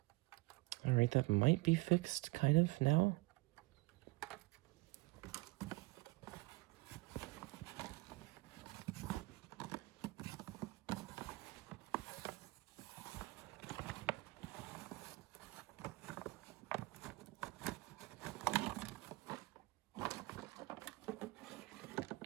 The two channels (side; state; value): left; quieter; 23.4 dB